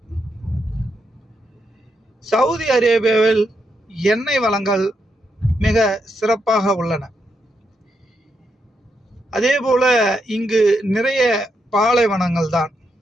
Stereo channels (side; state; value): both; normal; correlation 0.81